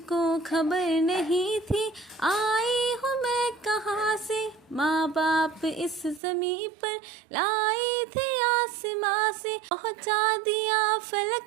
खबर नहीं थी आई हूँ मैं कहाँ से, माँ बाप इस ज़मीं पर लाए थे आसमां से। पहुँचा दिया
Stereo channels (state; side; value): drops out; left; at 6.2 s